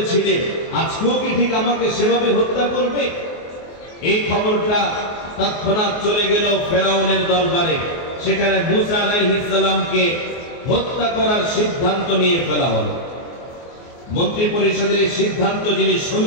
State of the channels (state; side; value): late; right; 24 ms